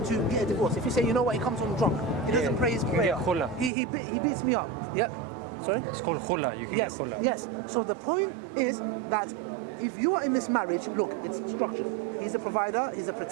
to get a divorce. If you say, you know what, he comes home drunk, he doesn't pray his prayer, he beats me up, yeah? Sorry? It's called khula. You can get khula. Yes. So the point is that if you are in this marriage, look, it's structured. He's a provider, he's a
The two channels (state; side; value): drops out; left; at 3.7 s